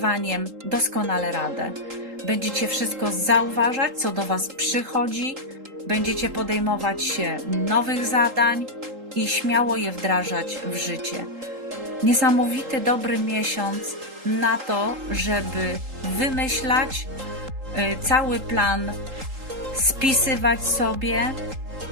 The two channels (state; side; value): late; left; 3.8 ms